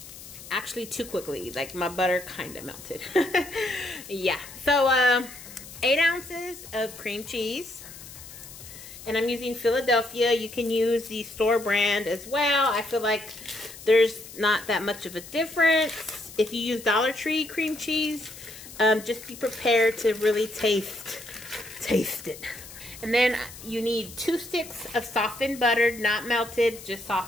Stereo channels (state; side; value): noise; left; hiss, 15 dB below the sound